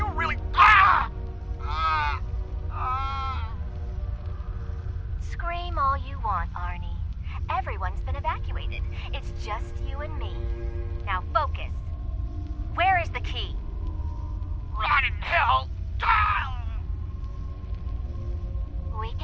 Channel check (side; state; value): both; identical; correlation 1.00